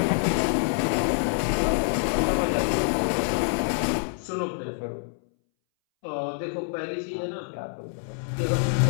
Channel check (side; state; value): right; silent; 61 dB below the other